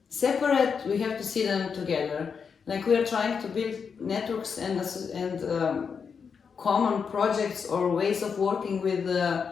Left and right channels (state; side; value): quieter; right; 6.1 dB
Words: separate, we have to see them together. Like we are trying to build networks and common projects or ways of working with